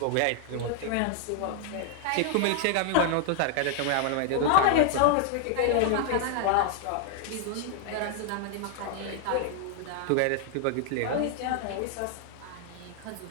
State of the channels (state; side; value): different; both; correlation -0.01